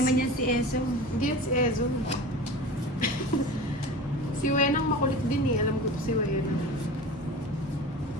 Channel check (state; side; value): normal; both; correlation 0.34